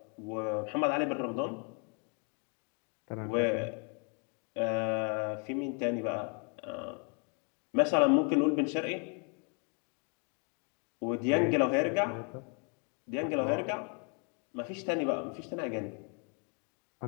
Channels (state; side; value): quieter; right; 38.4 dB